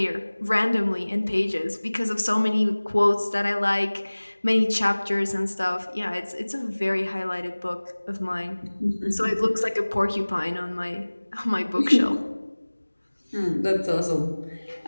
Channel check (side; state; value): both; inverted; correlation -1.00